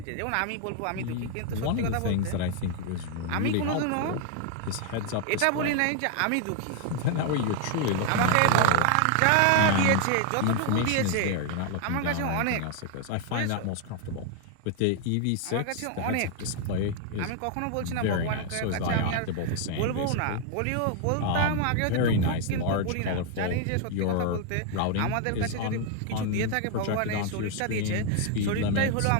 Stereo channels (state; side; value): different; both; correlation 0.00